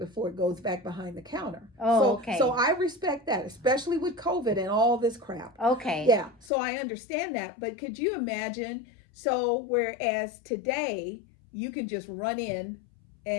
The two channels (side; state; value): right; drops out; at 6.5 s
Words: it goes back behind the counter. Okay. So I respect that, especially with COVID and all this crap. Okay. Yeah, so I understand that, but could you imagine, so whereas today you can just run in